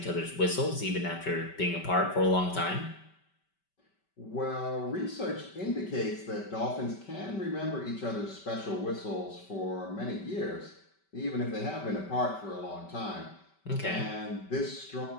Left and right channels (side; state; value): right; late; 5.2 ms